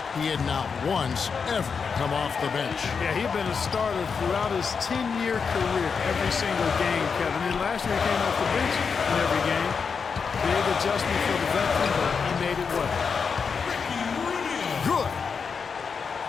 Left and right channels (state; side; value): quieter; right; 5.7 dB